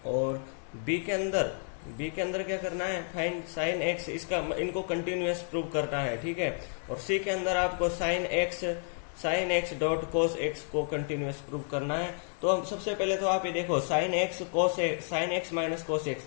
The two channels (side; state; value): right; silent; 57 dB below the other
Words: और बी के अंदर क्या करना है, फाइंड साइन x, इसका इनको कंटिन्यूअस प्रूव करना है, ठीक है। और सी के अंदर आपको sine x dot cos x को कंटिन्यूअस प्रूव करना है। तो हम सबसे पहले तो आप ये देखो sine x minus cos x,